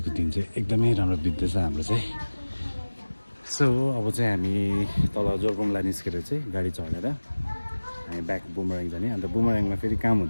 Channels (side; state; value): both; inverted; correlation -1.00